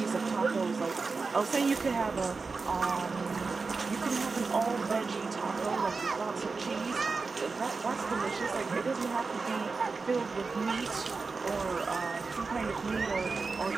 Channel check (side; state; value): left; quieter; 4.3 dB